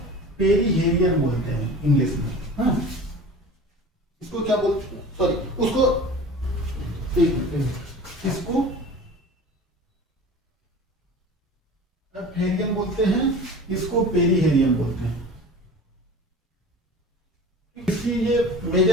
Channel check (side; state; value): both; normal; correlation 0.38